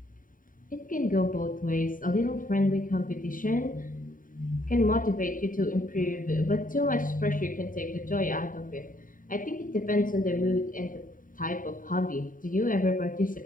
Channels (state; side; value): late; right; 0.39 ms